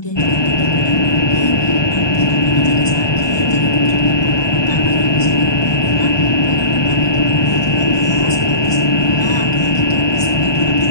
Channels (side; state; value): right; late; 1.2 ms